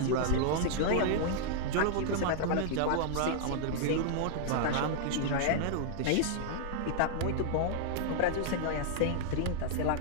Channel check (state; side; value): different; both; correlation -0.01